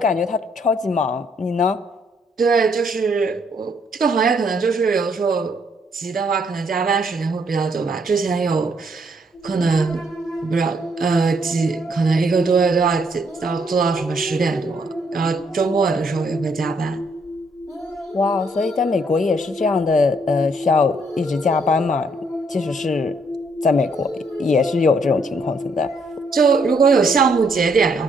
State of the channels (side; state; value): both; normal; correlation 0.70